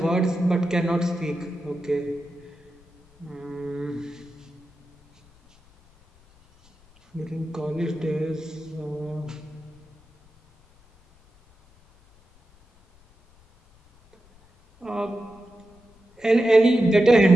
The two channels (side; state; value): left; noise; rumble, 30 dB below the sound